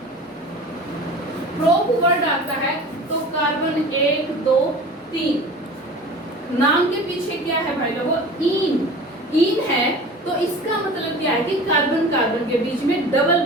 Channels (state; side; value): normal; both; correlation 0.39